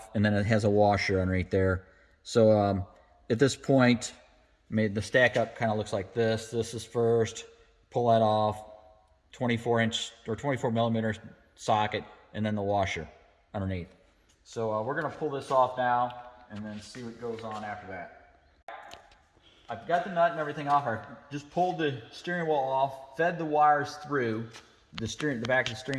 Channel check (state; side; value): identical; both; correlation 1.00